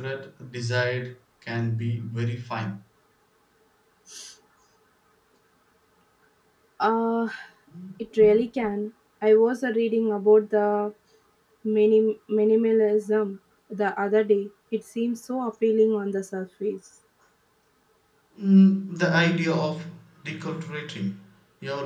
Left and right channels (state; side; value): identical; both; correlation 1.00